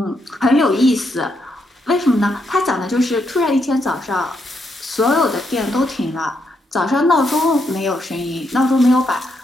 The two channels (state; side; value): normal; both; correlation 0.79